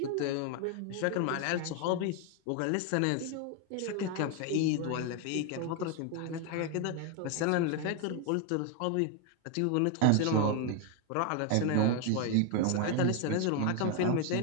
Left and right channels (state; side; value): different; both; correlation 0.01